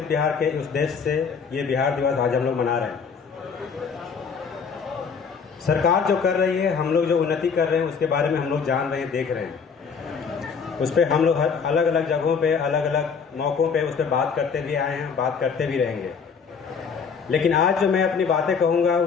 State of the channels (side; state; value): right; quieter; 5.9 dB